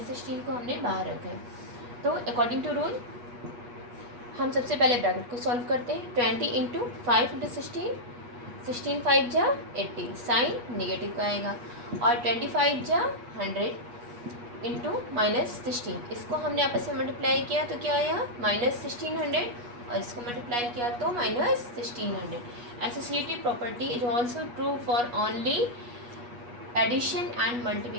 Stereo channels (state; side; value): late; left; 8.3 ms